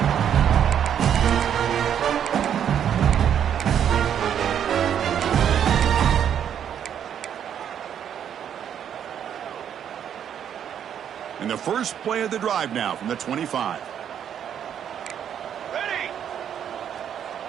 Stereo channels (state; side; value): quieter; left; 9.1 dB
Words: And the first play of the drive now from the 25. Ready.